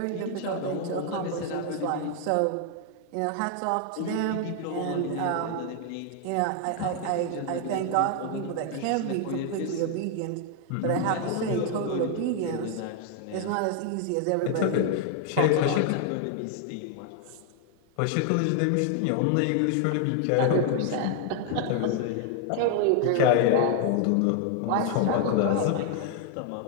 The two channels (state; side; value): different; both; correlation 0.00